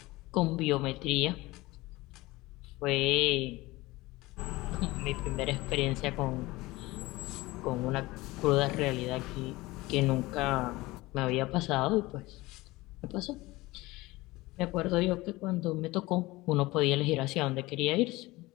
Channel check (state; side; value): quieter; right; 20.3 dB